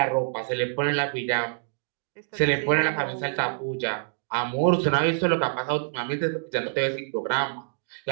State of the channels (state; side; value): silent; left; digital silence